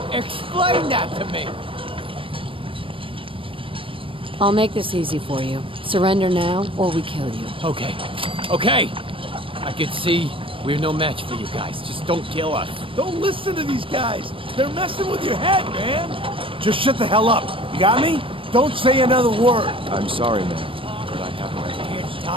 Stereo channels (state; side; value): late; left; 0.25 ms